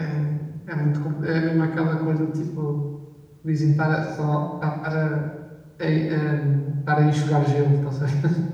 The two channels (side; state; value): both; identical; correlation 1.00